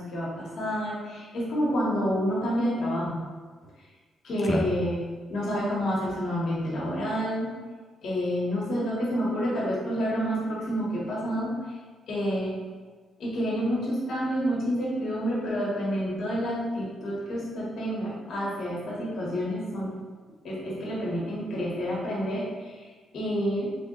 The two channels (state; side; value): normal; both; correlation 0.78